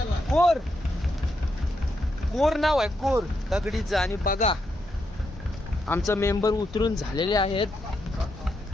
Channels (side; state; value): both; normal; correlation 0.81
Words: कोर. कोर नाव आहे कोर दगडीचं. आणि बघा आमचं मेंबर उतरून झालेले आहेत